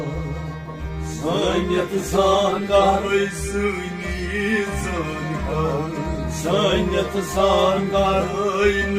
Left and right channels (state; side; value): identical; both; correlation 1.00